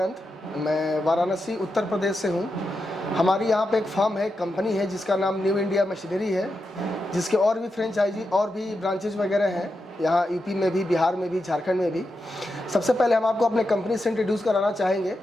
मैं वाराणसी उत्तर प्रदेश से हूँ। हमारी यहाँ पे एक फार्म है, कंपनी है जिसका नाम न्यू इंडिया मशीनरी है, जिसके और भी फ्रेंचाइजी और भी ब्रांचेज वगैरह हैं यहाँ यूपी में भी, बिहार में भी, झारखंड में भी। सबसे पहले हम आपको अपने कंपनी से इंट्रोड्यूस कराना चाहेंगे।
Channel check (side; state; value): both; normal; correlation 0.87